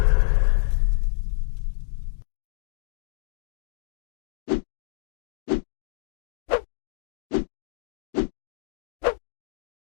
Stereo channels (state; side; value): silent; right; digital silence